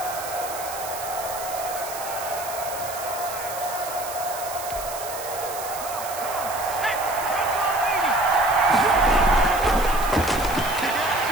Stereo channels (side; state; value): right; noise; hiss, 10 dB below the sound